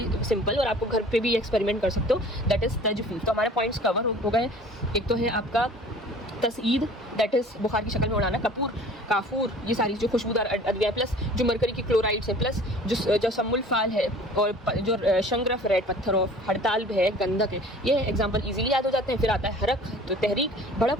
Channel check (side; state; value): both; normal; correlation 0.47